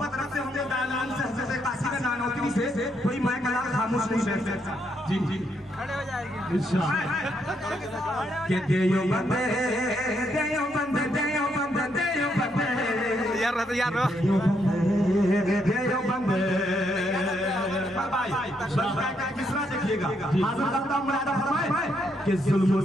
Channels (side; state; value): both; normal; correlation 0.76